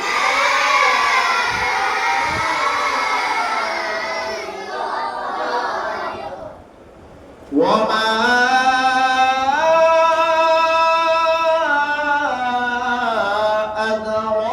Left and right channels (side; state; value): both; identical; correlation 1.00